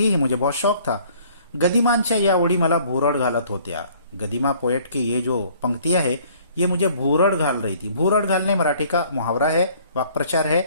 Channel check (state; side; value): inverted; both; correlation -0.57